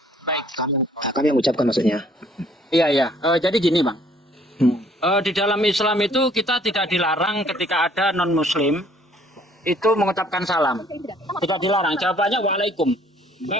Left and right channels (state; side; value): normal; both; correlation 0.60